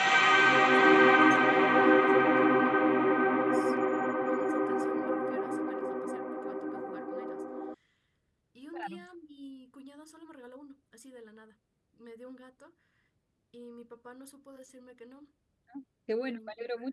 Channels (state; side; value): identical; both; correlation 1.00